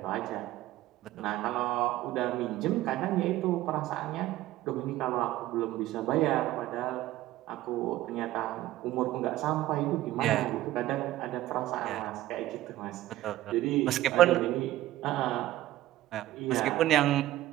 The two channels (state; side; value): quieter; left; 15.3 dB